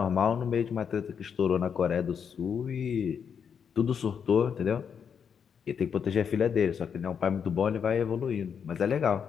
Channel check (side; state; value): right; quieter; 7.2 dB